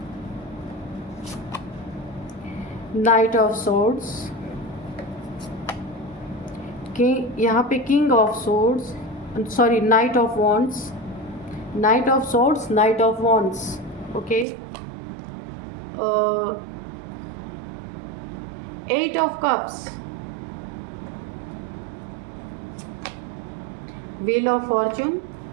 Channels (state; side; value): drops out; left; at 14.5 s